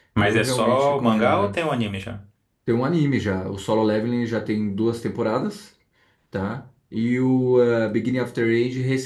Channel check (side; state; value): both; identical; correlation 1.00